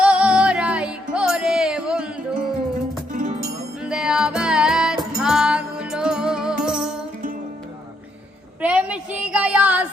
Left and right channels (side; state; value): both; normal; correlation 0.75